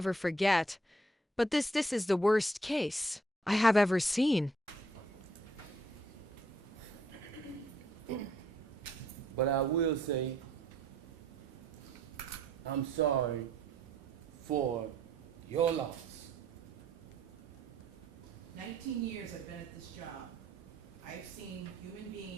forget. But this is the worst case I have ever seen. But I will say, I'm sorry for your loss. 19 years I've been at this job. I've seen human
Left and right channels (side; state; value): both; normal; correlation 0.65